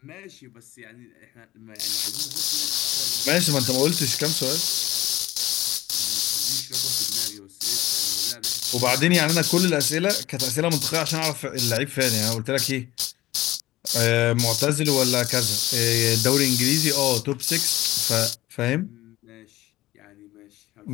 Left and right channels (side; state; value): right; quieter; 16.6 dB